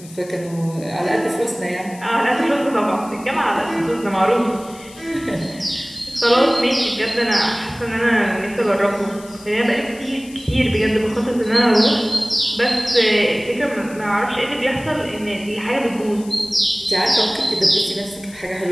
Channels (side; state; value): left; noise; hiss, 20 dB below the sound